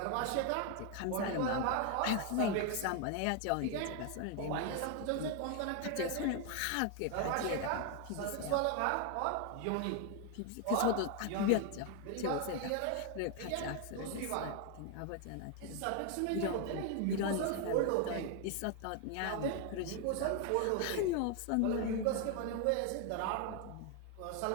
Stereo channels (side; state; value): both; different; correlation 0.01